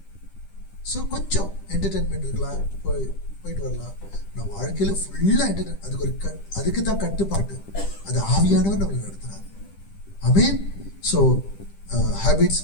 ஸோ கொஞ்சம் என்டர்டெயின்மெண்ட் இருக்கலாம், போயிட்டு வரலாம். நான் வாழ்க்கையில ஃபுல்லா என்டர்டெயின், அதுக்கு தான் கட்டுப்பாட்டு. அது ஆவியானவர் நம்மளை நடத்துறாரு. ஆமென். ஸோ ஹேபிட்ஸ்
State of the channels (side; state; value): right; late; 10 ms